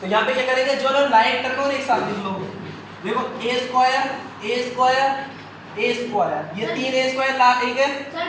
यहाँ पे क्या करेंगे, जो लोग लाइक टर्म और एक साथ लिख लो, देखो a स्क्वायर ये तीन a स्क्वायर ला एक है, सर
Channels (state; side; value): identical; both; correlation 1.00